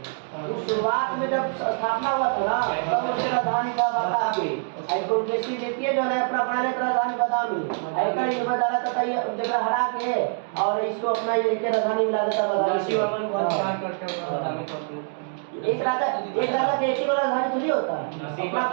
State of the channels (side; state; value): left; silent; 62 dB below the other